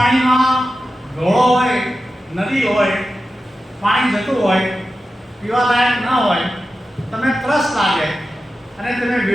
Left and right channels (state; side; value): normal; both; correlation 0.92